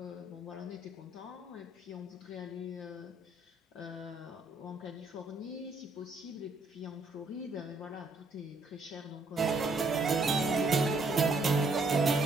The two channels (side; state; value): left; quieter; 3.0 dB